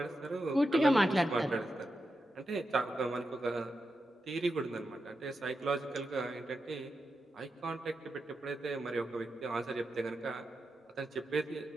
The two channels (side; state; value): both; normal; correlation 0.88